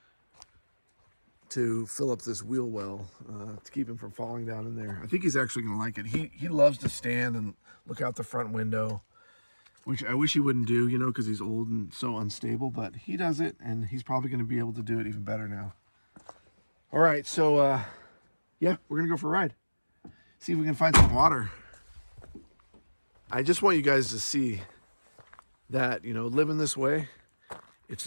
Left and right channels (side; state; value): both; inverted; correlation -1.00